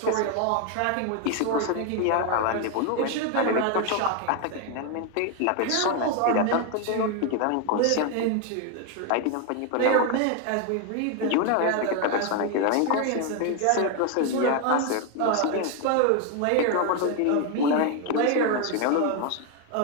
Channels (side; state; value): both; different; correlation 0.01